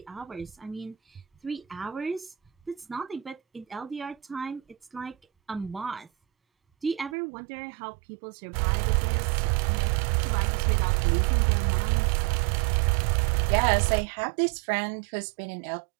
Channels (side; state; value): left; drops out; at 7.2 s